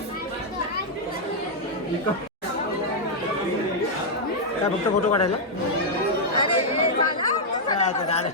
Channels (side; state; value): both; normal; correlation -0.03